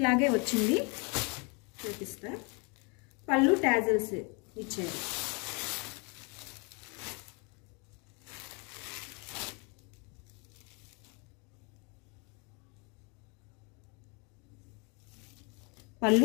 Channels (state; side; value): quieter; right; 32.4 dB